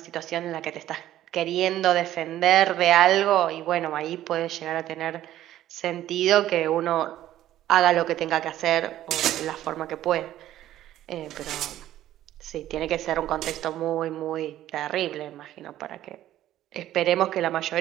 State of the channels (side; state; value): left; quieter; 13.1 dB